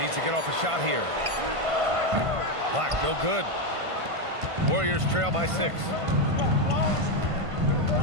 to get off a shot here. Black, no good. Warriors trail by 6.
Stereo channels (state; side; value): late; left; 1.5 ms